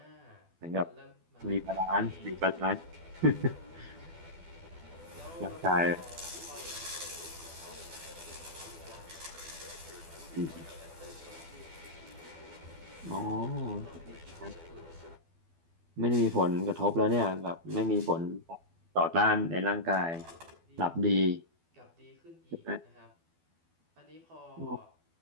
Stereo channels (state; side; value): late; left; 12 ms